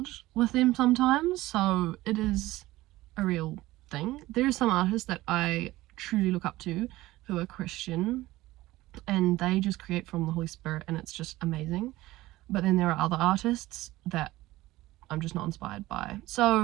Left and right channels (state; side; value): quieter; left; 17.6 dB